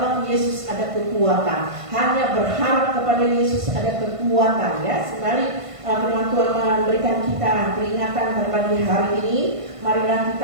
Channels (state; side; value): late; left; 1.5 ms